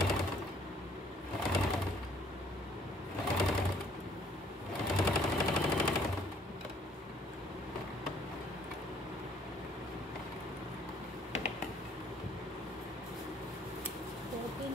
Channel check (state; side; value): normal; both; correlation 0.61